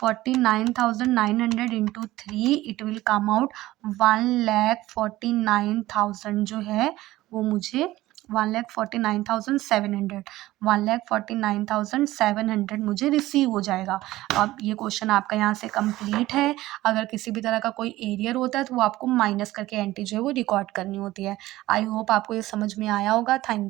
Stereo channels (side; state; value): left; quieter; 16.8 dB